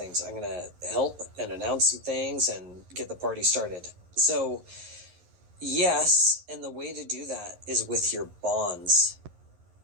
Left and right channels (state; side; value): late; left; 11 ms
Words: I'm going to help and announce some things and get the party started. So, yes, and the way to do that is with your bonds.